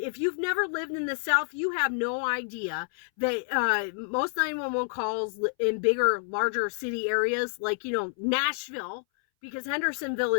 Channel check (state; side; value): silent; right; 59 dB below the other